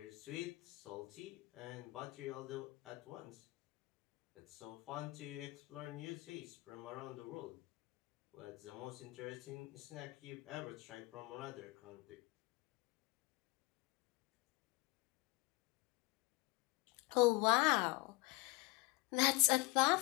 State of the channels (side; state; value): right; quieter; 24.6 dB